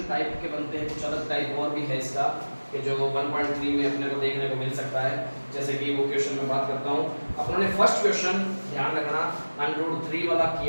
टाइप के बनते हैं, कुछ अलग टाइप और भी है इसका कि जो 1.3 में अपने को देखने को मिल सकता है। जैसे कि वो क्वेश्चन में बात करता हूँ, अपनों ने फर्स्ट क्वेश्चन ध्यान रखना √3 वाला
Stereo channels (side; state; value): both; inverted; correlation -1.00